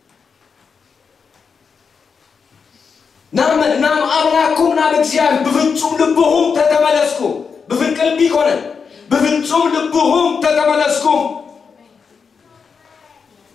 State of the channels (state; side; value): quieter; right; 5.8 dB